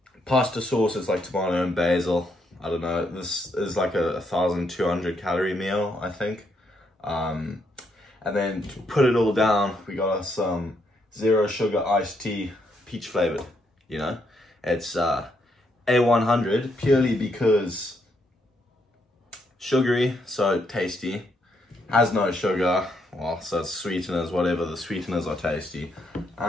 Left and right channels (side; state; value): both; normal; correlation 0.76